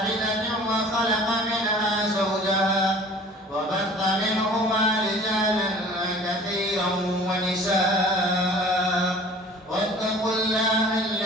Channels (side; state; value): both; normal; correlation 0.47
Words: وخلق منها زوجها وبث منهما رجالا كثيرا ونساء واتقوا الله